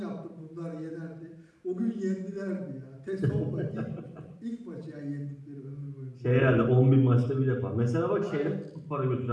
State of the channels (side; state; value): both; identical; correlation 1.00